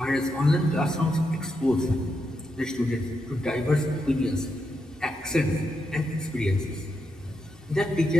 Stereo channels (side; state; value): both; normal; correlation 0.84